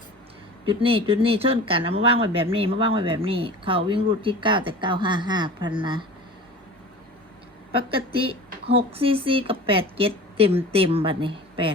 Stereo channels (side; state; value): both; normal; correlation 0.37